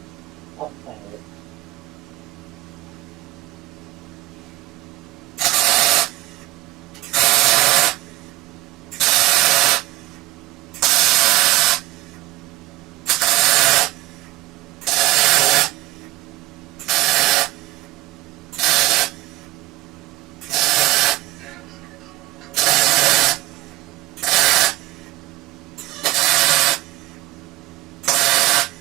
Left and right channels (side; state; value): left; quieter; 18.1 dB